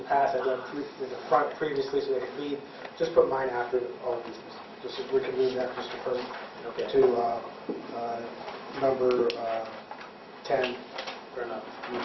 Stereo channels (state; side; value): identical; both; correlation 1.00